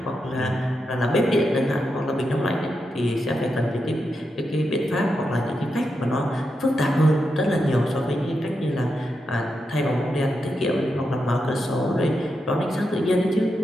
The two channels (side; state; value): both; normal; correlation 0.86